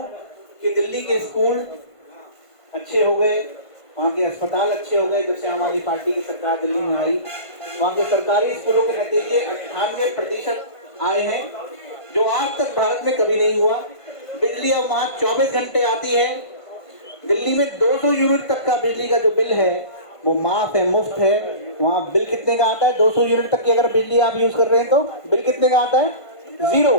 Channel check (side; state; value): right; late; 1.5 ms